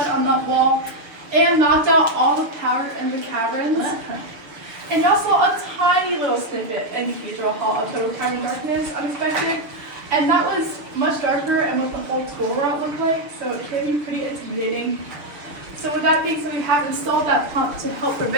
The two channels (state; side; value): late; left; 6.5 ms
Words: on that wall and knocked out all the power in the caverns. And y'all saw a tiny little snippet in Cathedral Hall of total tiny darkness, unexpected. And that was much darker and what the whole tool route looked like, so it can be pretty intimidating. So with that being said, we have installed that pump to help